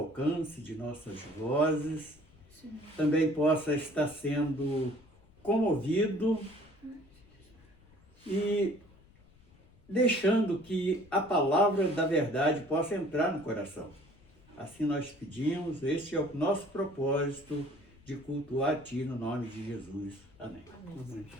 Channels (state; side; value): noise; left; rumble, 27 dB below the sound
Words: de nossas vozes, também possa estar sendo comovido e deixando que a palavra da verdade possa entrar no coração. Assim nós pedimos, este é o nosso propósito de cultuar a Ti no nome de Jesus. Amém. Amém.